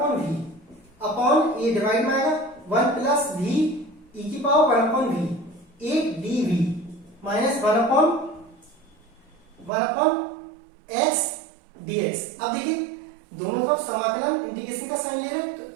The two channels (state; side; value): drops out; left; at 9.7 s